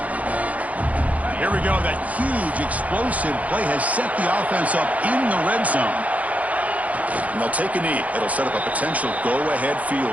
Here we go. That huge explosive play has set the offense up in the red zone. And they'll take a knee. It'll set up a potential go-ahead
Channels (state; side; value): late; left; 0.070 ms